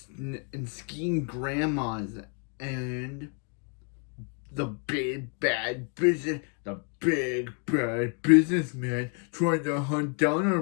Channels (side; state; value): right; quieter; 39.2 dB